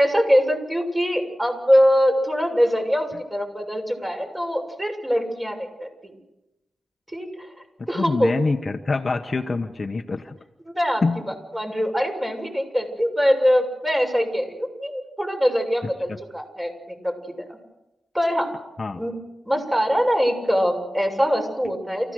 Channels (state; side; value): normal; both; correlation 0.97